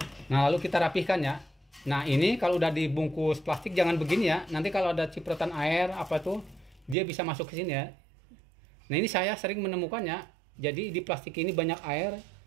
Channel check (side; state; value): left; drops out; at 7.0 s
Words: Nah, lalu kita rapihkan ya. Nah, ini kalau udah dibungkus plastik jangan begini ya. Nanti kalau ada cipratan air apa tuh, dia bisa masuk ke sini ya. Nah, ini saya sering menemukannya. Jadi di plastik ini banyak air.